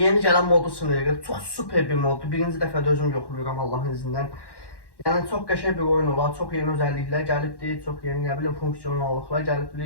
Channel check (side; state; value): right; late; 1.1 ms